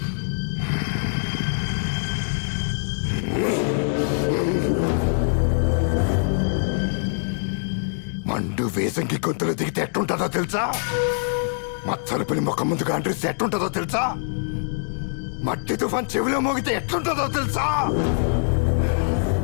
మండు వేసంకి గొంతులు దిగితే ఎట్టుంటుందో తెలుసా? మచ్చల పిల్లి ముఖం ముందుగా అండ్రిస్తే ఎట్టుంటుందో తెలుసా? మట్టి తుఫాన్ చెవిలో మోగితే ఎట్లుంటుందో తెలుసా?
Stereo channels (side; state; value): right; silent; digital silence